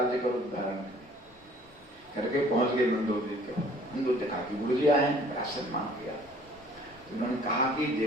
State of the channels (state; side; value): normal; both; correlation 0.54